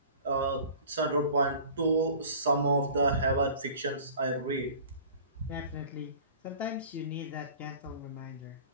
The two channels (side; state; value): both; inverted; correlation -0.44